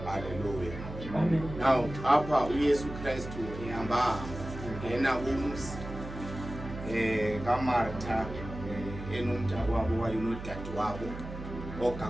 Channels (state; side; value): noise; right; hum, 10 dB below the sound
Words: Hallelujah. Amen. Now apha uYesu Kristu ehamba ungena umzi kaMartha enomntakwabo wayinodade wabo